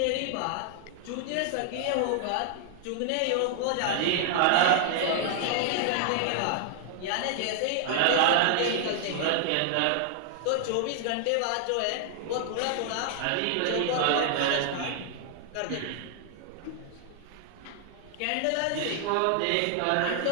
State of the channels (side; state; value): both; different; correlation 0.00